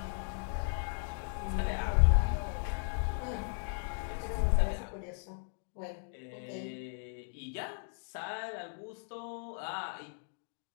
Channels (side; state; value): right; silent; 54 dB below the other